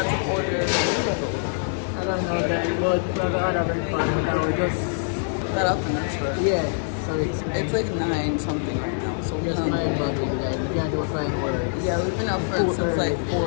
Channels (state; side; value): silent; right; digital silence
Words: to order. I don't know that, but we're gonna have fun. Now we just That up in this first. yeah. So It's like 9 something right now. So we're just mind boggling, like we can't do fine words. yeah, we've been up for since like